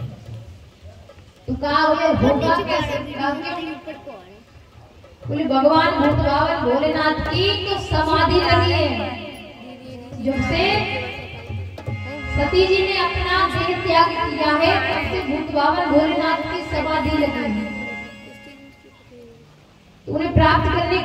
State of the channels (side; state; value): both; identical; correlation 1.00